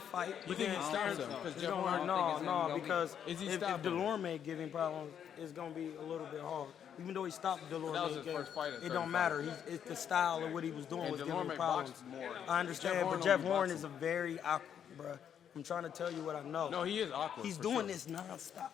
fight. You But think then he stops him? so. Because it's Jeff gonna, Horn. think no, it's no, gonna be- because Is he if stopping him? Delorme give him problems, it's gonna be a little bit hard. Even though he stopped Delorme, That was his first fight at it don't 35. matter. It's the style of what he was doing And was giving him Delorme problems. boxes more. I understand, Jeff Horn but Jeff don't be Horn boxing. is a very awkward, bruh. I'm trying to tell you what I know. No, he is awkward. He's for doing sure. this nonstop,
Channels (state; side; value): quieter; right; 8.7 dB